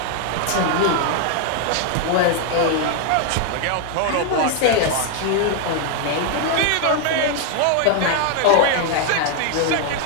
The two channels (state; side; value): different; both; correlation 0.00